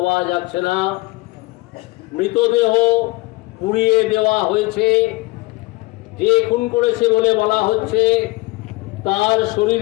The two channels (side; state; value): right; quieter; 22.7 dB